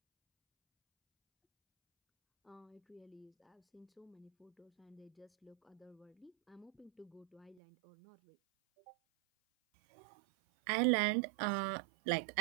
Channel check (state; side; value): drops out; left; at 7.6 s